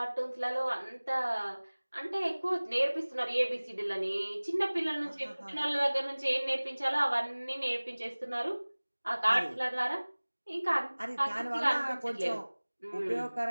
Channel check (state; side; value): inverted; both; correlation -1.00